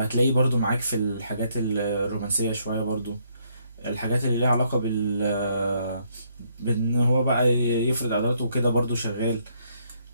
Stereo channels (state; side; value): inverted; both; correlation -0.71